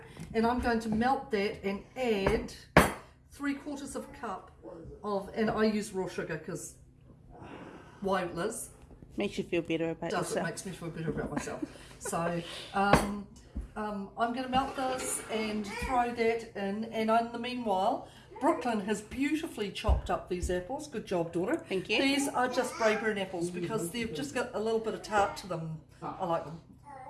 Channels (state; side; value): identical; both; correlation 1.00